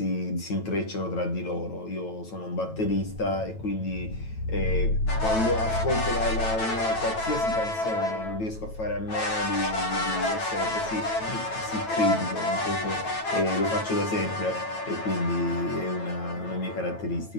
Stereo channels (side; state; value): right; late; 9.1 ms